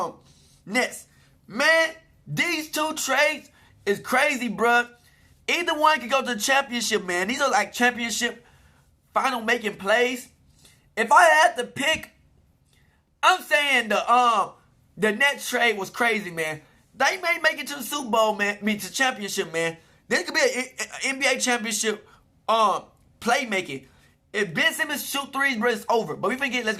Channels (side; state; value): both; identical; correlation 1.00